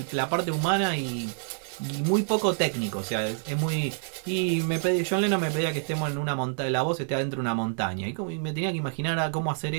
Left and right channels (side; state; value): left; silent; 60 dB below the other